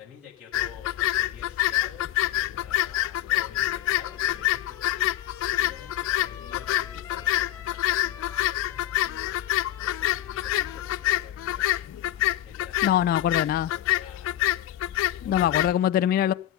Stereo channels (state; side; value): quieter; right; 13.0 dB